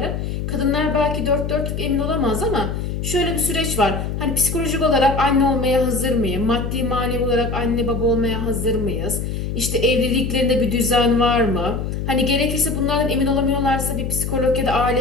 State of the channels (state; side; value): noise; left; hum, 3 dB below the sound